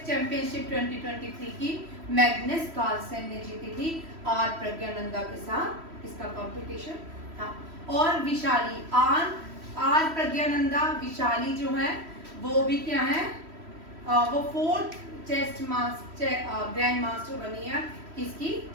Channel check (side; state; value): left; late; 3.1 ms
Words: चैंपियनशिप 2023 की मैग्नस कार्लसन ने जीती थी आर प्रज्ञानंदा के साथ, इसका कंपटीशन था। और विशाली आर प्रज्ञानंदा विशाली जो है वो भी क्या है, वो 4th चेस ग्रैंड मास्टर बनी है किसकी,